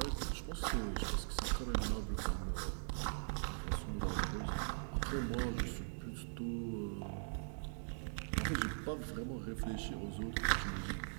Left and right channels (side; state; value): left; silent; 50 dB below the other